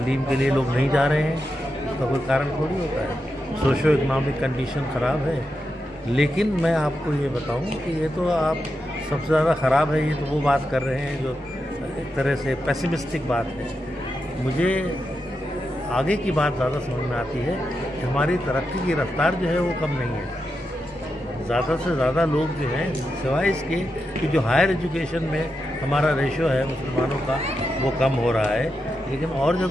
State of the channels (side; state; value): both; normal; correlation 0.87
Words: के लिए लोग नहीं जा रहे हैं, उसका कोई कारण थोड़ी होता है। सोशो इकनॉमिक कंडीशन ख़राब है। लेकिन मैं आपको ये बताऊं कि ये तो आप सबसे ज़्यादा ख़राब है, ये तो वो बात कर रहे हैं जो एक तरह से पेसिमिस्टिक बात है। मुझे आगे की बात ज़्यादा समझ में आती है कि हमारी तरक्की की रफ्तार जो है वो कम नहीं है। ज़्यादा से ज़्यादा लोग जो हैं, सिवाय इसके कि जो हायर एजुकेशन में हमारा रेशो है मुसलमानों का वो कम हो रहा है, लेकिन और